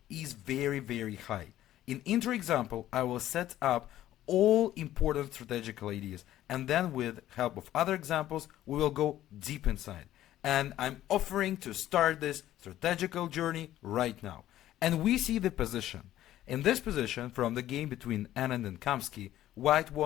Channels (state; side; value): quieter; right; 13.4 dB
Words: is very high. In intro example I will set up all important strategical ideas, and then with help of other examples we will go deep inside. And I'm offering to start this strategical journey right now. And we see the position. In this position, from the game between Anand and Kamsky, white